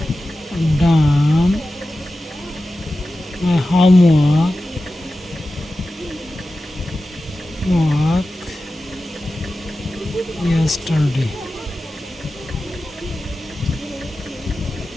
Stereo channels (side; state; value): both; normal; correlation 0.94